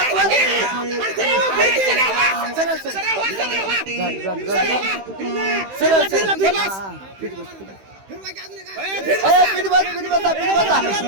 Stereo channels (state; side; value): late; left; 15 ms